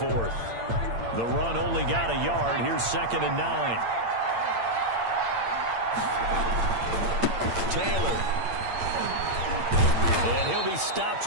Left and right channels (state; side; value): late; left; 8.7 ms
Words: The run only got a yard. Here's 2nd and 9. Taylor. And he'll be stopped